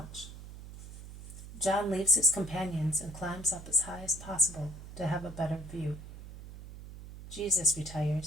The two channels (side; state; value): right; noise; hum, 13 dB below the sound